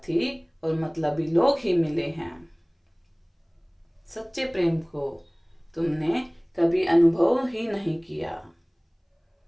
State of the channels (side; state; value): both; identical; correlation 1.00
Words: और मतलबी लोग ही मिले हैं। सच्चे प्रेम को तुमने कभी अनुभव ही नहीं किया,